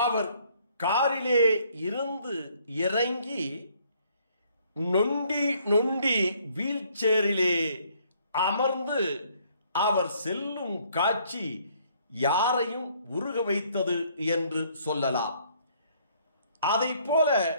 காரிலே இருந்து இறங்கி நொண்டி வீல் சேரிலே அமர்ந்து அவர் செல்லும் காட்சி யாரையும் உருக வைத்தது என்று சொல்லலாம். அதை போல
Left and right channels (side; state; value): both; inverted; correlation -0.64